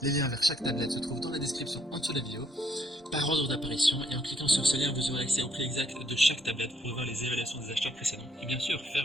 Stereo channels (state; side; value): normal; both; correlation 0.70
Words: Les liens vers chaque tablette se trouvent dans la description en dessous de la vidéo. par ordre d'apparition, et en cliquant sur ce lien, vous aurez accès au prix exact de chaque tablette pour voir les évaluations des acheteurs précédents et bien sûr